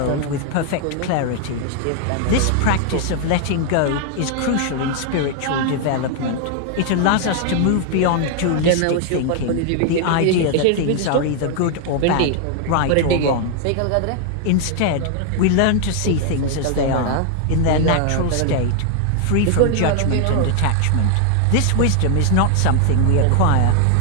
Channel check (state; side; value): different; both; correlation 0.00